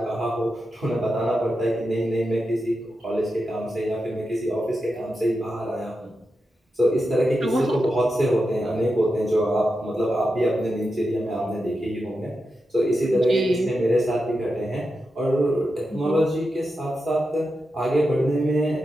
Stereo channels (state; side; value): normal; both; correlation 0.89